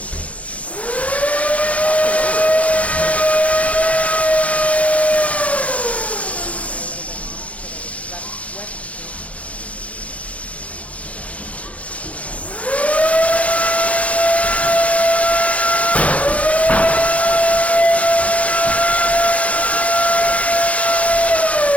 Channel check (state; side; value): late; right; 0.065 ms